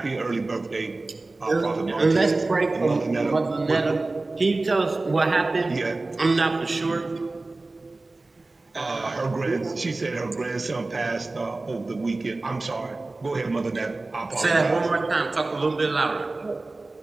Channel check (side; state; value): left; quieter; 3.2 dB